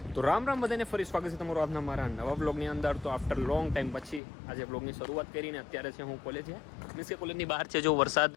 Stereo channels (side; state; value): right; drops out; at 4.2 s